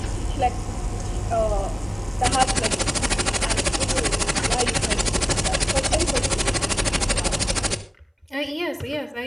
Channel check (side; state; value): both; identical; correlation 1.00